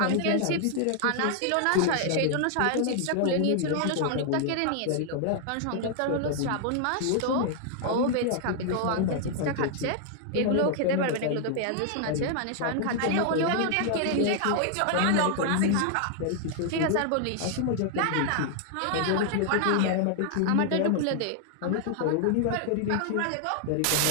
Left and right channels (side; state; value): both; different; correlation 0.00